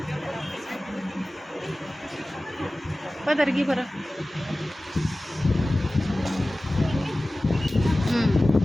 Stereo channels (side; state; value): both; normal; correlation 0.97